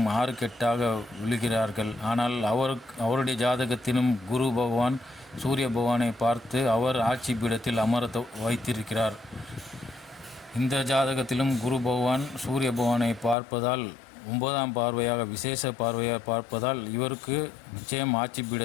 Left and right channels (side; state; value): right; drops out; at 13.4 s